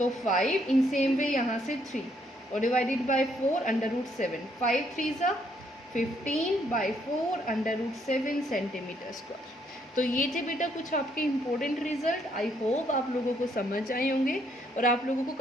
5, इन सेम वे यहाँ से 3 और डिवाइडेड बाय 4 √7, 5 3 ज़ा 15/4 √7 सेंटीमीटर स्क्वायर। तो ये थे बेटा कुछ आपके इम्पोर्टेंट रिजल्ट। आई होप आप लोगों को समझ आए होंगे और आप लोगों को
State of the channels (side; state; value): both; normal; correlation 0.71